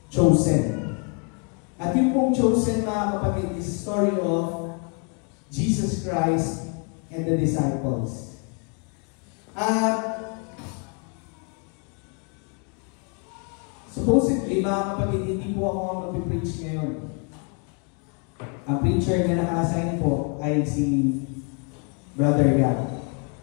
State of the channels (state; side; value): quieter; right; 37.4 dB